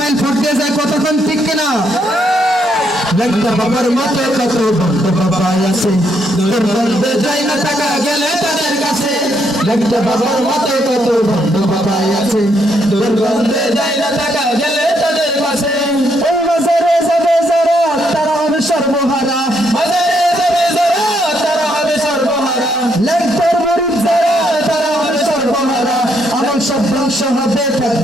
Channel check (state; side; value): normal; both; correlation 0.75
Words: ফট দিয়ে যায়, কতক্ষণ ঠিক কিনা? ল্যাংটা বাবার মতো কত ভণ্ড বাবা আছে, দুর্গন্ধে যায় না থাকা গেলে তাদের কাছে। ল্যাংটা বাবার মতো কত ভণ্ড বাবা আছে, দুর্গন্ধে যায় না থাকা গেলে তাদের কাছে। ওই বাজারে যাবে যারা তারা হবে সর্বহারা, বাজারে যাবে যারা তারা হবে সর্বহারা। ল্যাংটার মরিদ যারা তারা হবে সর্বহারা, আমল সব ধ্বংস হবে,